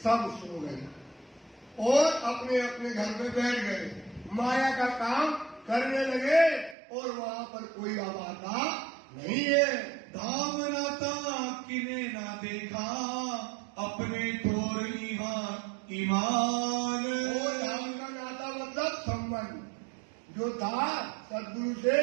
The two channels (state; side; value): drops out; left; at 6.8 s